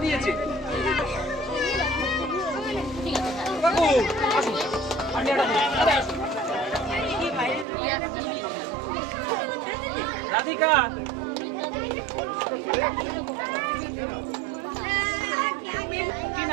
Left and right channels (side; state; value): left; drops out; at 7.7 s